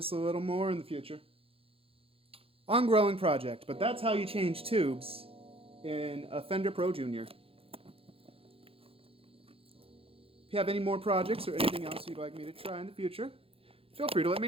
a little more in the future. Ongoing project, but that's how you change tubes in a Fender Pro Junior. If you have any more projects or anything else you'd like me to try in the future, feel free to let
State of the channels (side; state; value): left; late; 0.27 ms